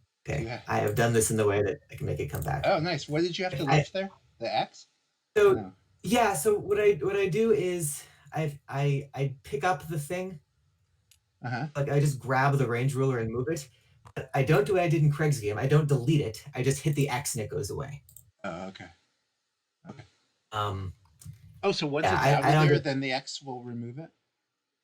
Okay, I have done this in the way that I can make it come back. Oh, nice. What did you have to lift there? The X? So no. Yeah, so what I do is I pick up the thing. Like I just grab the range ruler and move it. But I don't do what I did in Craig's game. I don't delete it. I just hit the X and it goes away. Oh, okay. Okay. Oh, so once it's out of there, then the X will remove it?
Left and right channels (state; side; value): identical; both; correlation 1.00